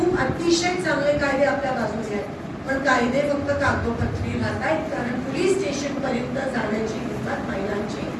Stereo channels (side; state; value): both; identical; correlation 1.00